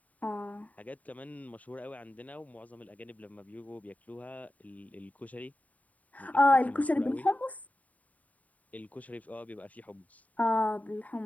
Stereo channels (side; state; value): right; late; 0.071 ms